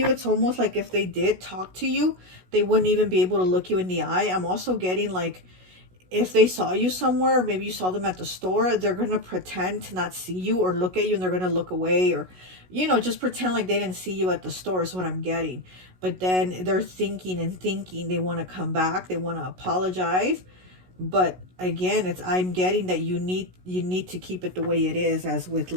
It's almost like if they did talk to you, they wouldn't even be able to look you in the eye. I'm also getting like, if they saw you somewhere, maybe you saw them at the store, they're going to pretend to not see you or look at you, and they're going to look away, or, you know, just pretend like they didn't see you at the store is what I'm getting. But then they're thinking they want to come back, they want to apologize. But again, I'm getting that you need to keep it the way it is, as with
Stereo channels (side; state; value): left; late; 16 ms